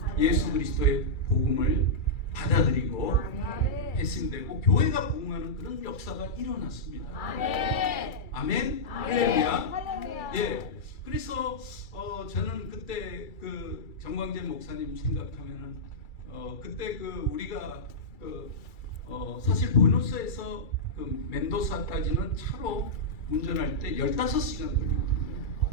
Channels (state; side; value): late; right; 2.3 ms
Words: 예수 그리스도의 복음을 받아들이고 회심되고 교회가 부흥하는 그런 역사가 일어났습니다. 아멘. 할렐루야. 예. 그래서 저는 그때 그 정광재 목사님 생각하면은 그때 그 우리가 사실 보노스에서 그 멘도사까지는 차로 운전할 때 15시간 걸리거든요.